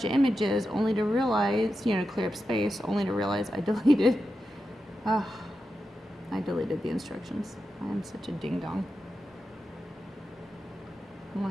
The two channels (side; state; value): both; normal; correlation 0.89